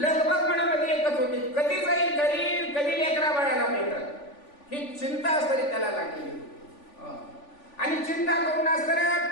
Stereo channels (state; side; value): late; right; 3.5 ms